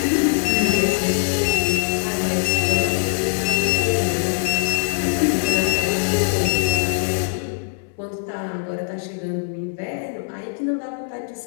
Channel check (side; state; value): right; silent; 64 dB below the other